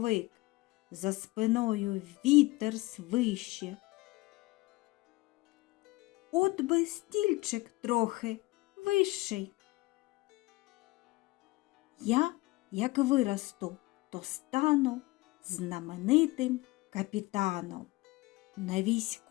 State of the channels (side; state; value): right; quieter; 21.0 dB